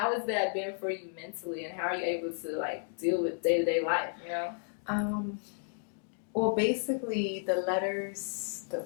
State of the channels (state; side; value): silent; right; digital silence